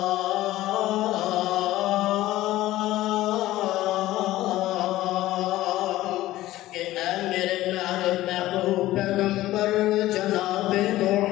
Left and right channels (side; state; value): right; quieter; 15.8 dB